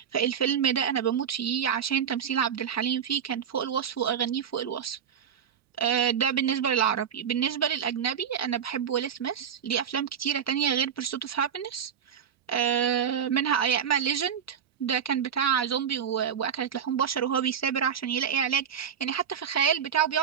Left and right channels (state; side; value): quieter; left; 8.1 dB